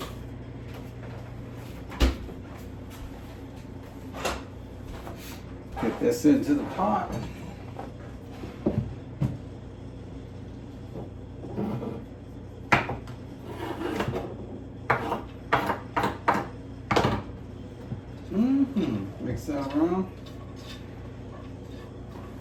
Get this into the pot. Mix that around.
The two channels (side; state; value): both; identical; correlation 1.00